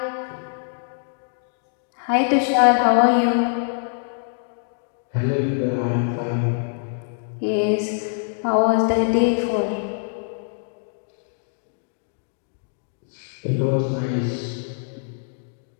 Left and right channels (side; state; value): right; silent; digital silence